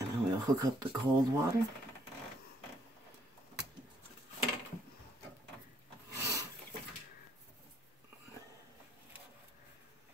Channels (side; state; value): both; normal; correlation 0.68